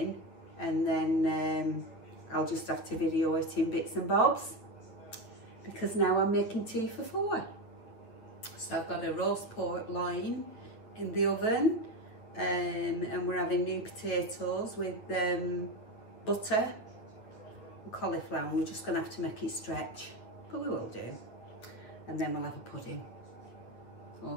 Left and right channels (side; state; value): right; late; 9.3 ms